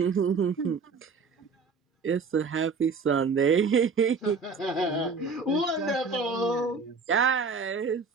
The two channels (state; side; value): quieter; left; 4.6 dB